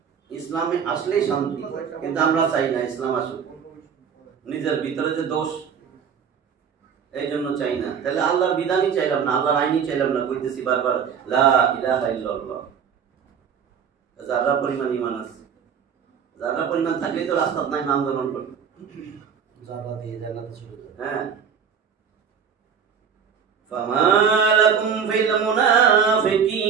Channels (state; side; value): quieter; left; 7.0 dB